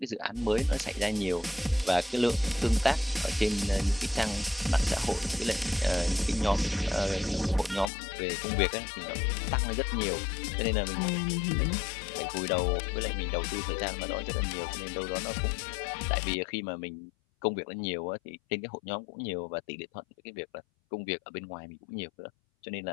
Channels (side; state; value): right; drops out; at 7.9 s